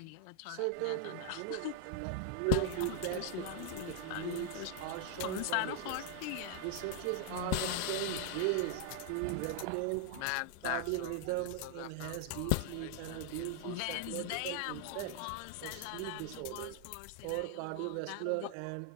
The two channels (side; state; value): both; different; correlation 0.00